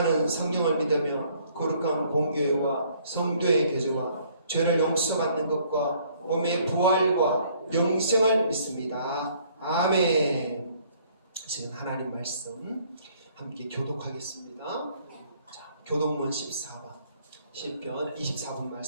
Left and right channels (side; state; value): both; inverted; correlation -0.62